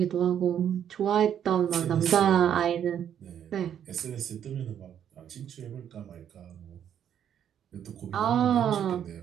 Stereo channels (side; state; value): left; quieter; 9.4 dB